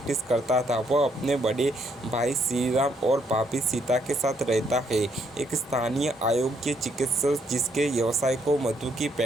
करता था। वह अपने बड़े भाई श्रीराम और भाभी सीता के साथ रहता है, एक स्थानीय अयोग्य चिकित्सक जिसके व्यवसाय को मधु की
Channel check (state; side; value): normal; both; correlation 0.72